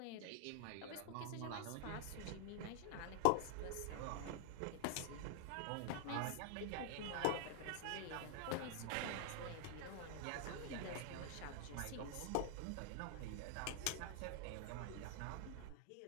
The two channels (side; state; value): both; different; correlation 0.00